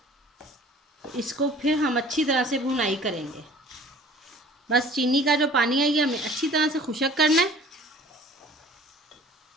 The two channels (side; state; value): both; normal; correlation 0.49